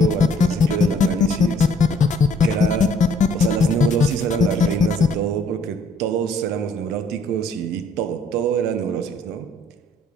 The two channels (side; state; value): both; normal; correlation 0.61